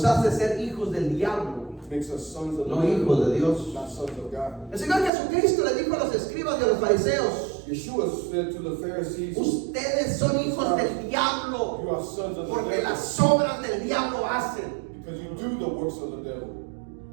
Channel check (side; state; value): left; drops out; at 5.1 s